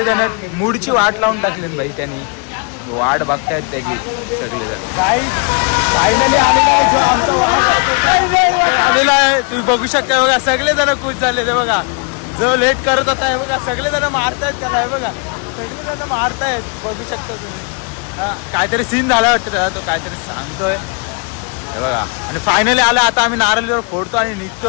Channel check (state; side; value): quieter; right; 36.4 dB